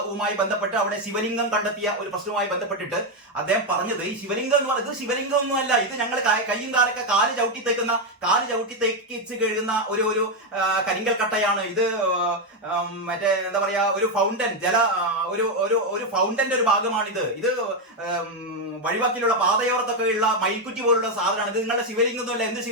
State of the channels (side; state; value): both; normal; correlation 0.05